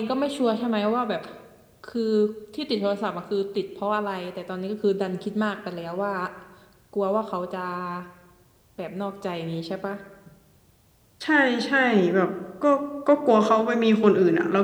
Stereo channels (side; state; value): both; identical; correlation 1.00